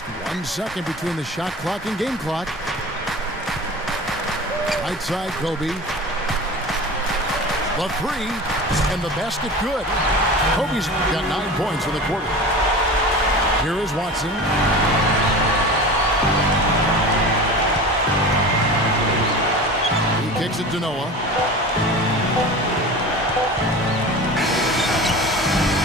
1 second between the shot clock and game clock. Right side, Kobe. The 3, and the basket good. Kobe's got 9 points in the quarter. Here is Watson. He kicks it to Noah.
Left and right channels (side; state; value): both; normal; correlation 0.34